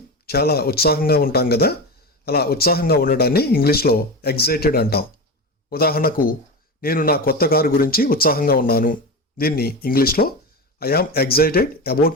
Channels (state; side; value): normal; both; correlation 0.22